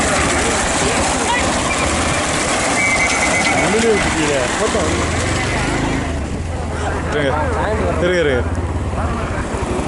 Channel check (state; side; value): identical; both; correlation 1.00